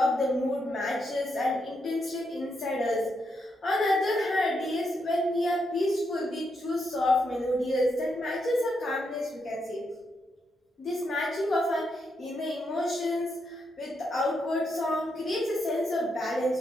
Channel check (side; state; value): both; normal; correlation 0.81